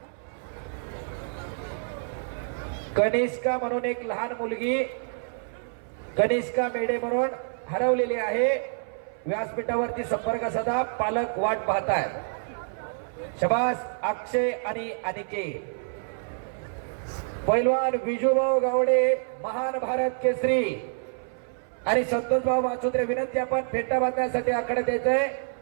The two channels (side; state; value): left; silent; 60 dB below the other